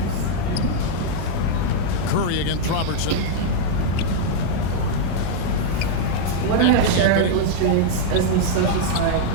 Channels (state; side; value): different; both; correlation -0.01